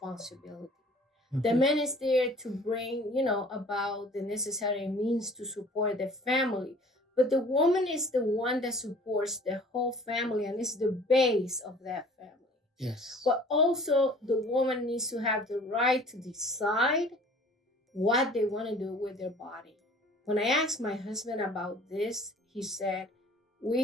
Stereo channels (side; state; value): both; normal; correlation 0.49